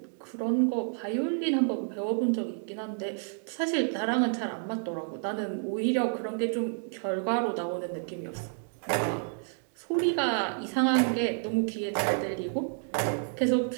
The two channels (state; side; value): silent; left; 58 dB below the other